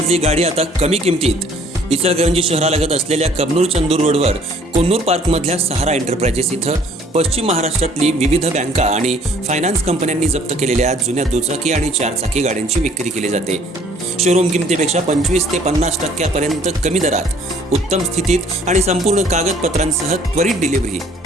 गाडी आता कमी किमतीत. इचलकरंजी शहरालगत असलेल्या कबनूर चंदूर रोडवर कोन्नूर पार्कमधल्या सहारा एंटरप्राइजेस इथं पश्चिम महाराष्ट्रातली विविध बँका आणि फायनान्स कंपन्यांनी जप्त केलेल्या जुन्या दुचाकी आणि चारचाकी गाड्यांची विक्री केली जाते. शोरूम किमतीपेक्षा 25 ते 50% कमी दरात, उत्तम स्थितीत आणि संपूर्ण कागदपत्रांसह त्वरित डिलिव्हरी.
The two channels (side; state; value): both; normal; correlation 0.58